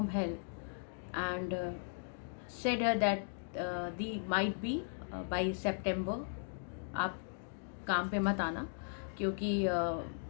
help and said her that the might be by September आप काम पे मत आना क्योंकि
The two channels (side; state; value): right; silent; digital silence